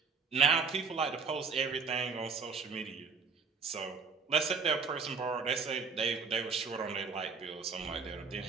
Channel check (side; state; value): left; quieter; 5.2 dB